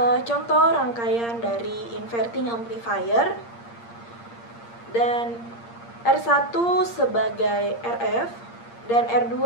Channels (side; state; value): right; late; 8.6 ms